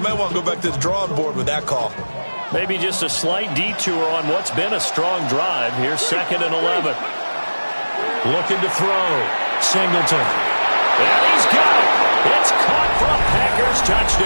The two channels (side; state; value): both; inverted; correlation -1.00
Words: want to go back to the drawing board with that call. Maybe just a slight detour on what's been a strong drive. Here's 2nd and 11. Looking to throw. Singleton. And he's got it. It's caught for a Packers